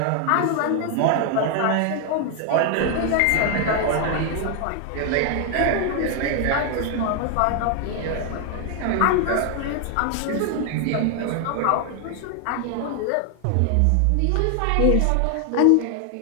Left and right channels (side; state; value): both; different; correlation 0.00